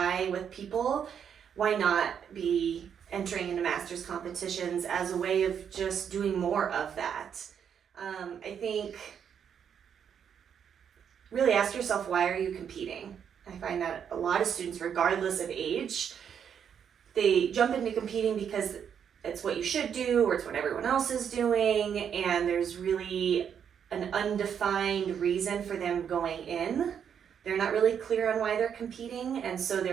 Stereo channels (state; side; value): quieter; left; 8.0 dB